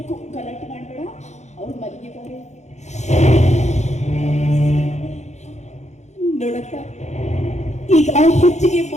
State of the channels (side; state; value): right; late; 0.33 ms